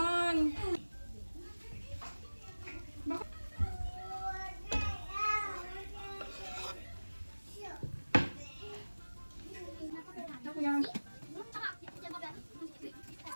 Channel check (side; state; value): both; inverted; correlation -1.00